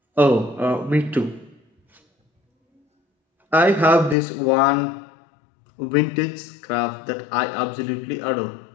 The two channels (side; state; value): right; drops out; at 4.2 s